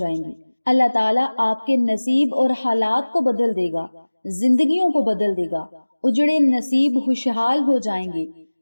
گی۔ اللہ تعالیٰ آپ کے نصیب اور حالات کو بدل دے گا، زندگیوں کو بدل دے گا۔ اجڑے نصیب خوشحال ہو جائیں گے،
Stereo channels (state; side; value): inverted; both; correlation -1.00